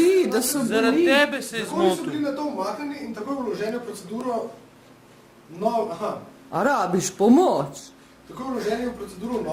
da so zaradi boli. tebe se je Zakoni so zmotil. bili na to umaknjeni in tako je vloženi v proceduro... A rabiš pomoč? Tako je vloženi v proceduro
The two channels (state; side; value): identical; both; correlation 1.00